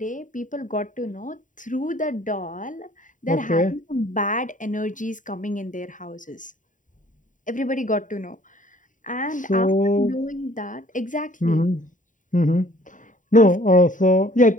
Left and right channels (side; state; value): right; late; 0.38 ms